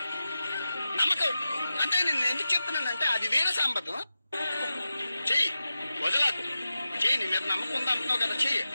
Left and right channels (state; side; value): inverted; both; correlation -0.93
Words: నమ్మకం అంటే నేను ఎందుకు చెప్తున్నానంటే అది వేరే సంబంధం. చెయ్యి, వదలకు, చెయ్యి, నీ మీద నమ్మకం ఉంది అంటున్నావు కదా, చెయ్యి,